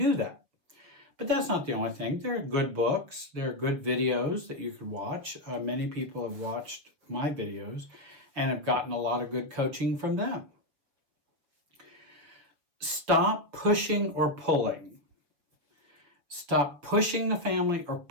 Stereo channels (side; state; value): left; late; 6.4 ms